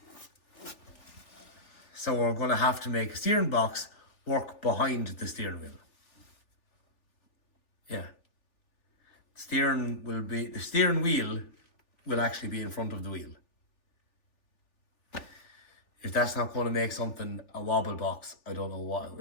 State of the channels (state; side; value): late; right; 3.4 ms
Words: So we're going to have to make a steering box work behind the steering wheel. Yeah. The steering wheel will actually be in front of the wheel. If that's not going to make something a wobble box, I don't know what it